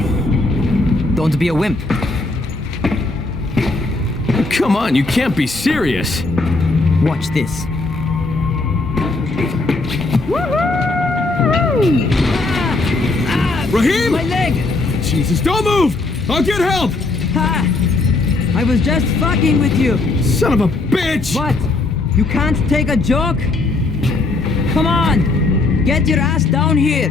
Don't be a wimp. Come on, you can't be serious. Watch this. Raheem! My leg! Jesus, don't move! I'll get help! Ha! I was just fucking with you. Son of a bitch! What? You can't take a joke? Come on! Get your ass down here!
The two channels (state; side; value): quieter; right; 3.3 dB